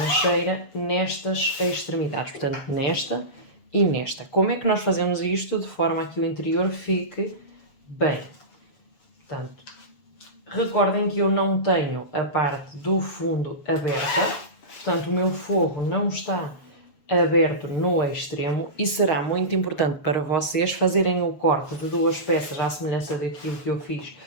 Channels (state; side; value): late; right; 7.0 ms